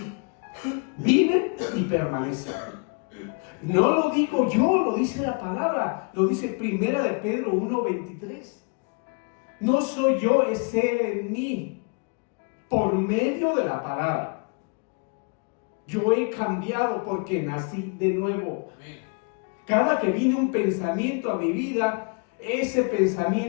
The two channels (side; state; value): right; quieter; 35.7 dB